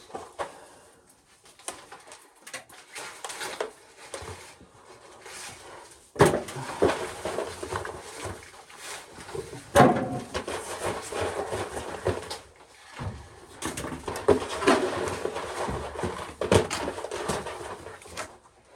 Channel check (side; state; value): both; identical; correlation 1.00